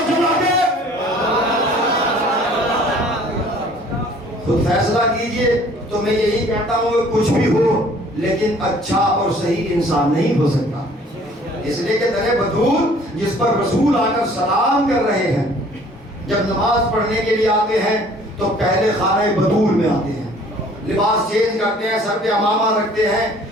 جلا دے، خود فیصلہ کیجئے۔ تو میں یہی کہتا ہوں کہ کچھ بھی ہو لیکن اچھا اور صحیح انسان نہیں ہو سکتا، اس لیے کہ در بطول جس پر رسول آ کر سلام کر رہے ہیں، جب نماز پڑھنے کے لیے آتے ہیں تو پہلے خانہ بطول میں آتے ہیں، لباس چینج کرتے ہیں، سر پہ امامہ رکھتے ہیں،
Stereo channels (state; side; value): normal; both; correlation 0.54